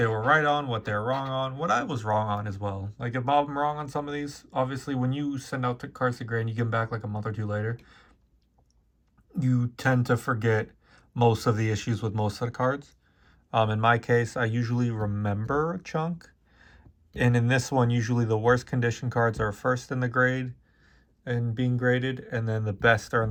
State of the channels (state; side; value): identical; both; correlation 1.00